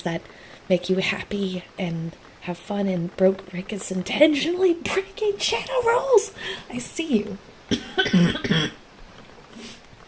that make you happy and have fun, and Rick is intentionally breaking channel rules. I see you.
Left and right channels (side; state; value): both; identical; correlation 1.00